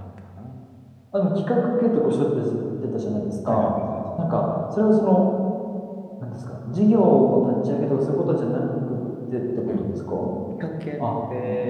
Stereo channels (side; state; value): both; identical; correlation 1.00